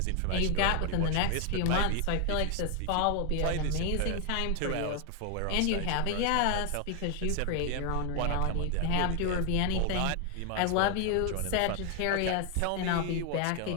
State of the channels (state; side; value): different; both; correlation 0.00